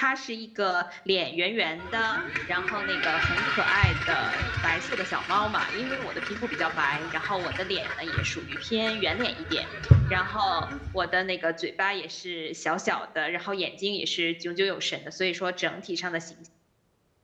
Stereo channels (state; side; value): identical; both; correlation 1.00